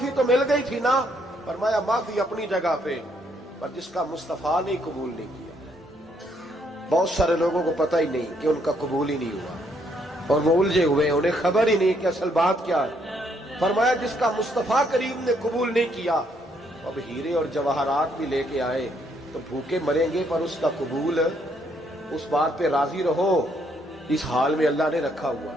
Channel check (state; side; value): normal; both; correlation 0.71